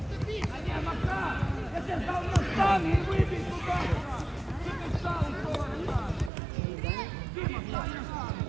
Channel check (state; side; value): drops out; left; at 6.3 s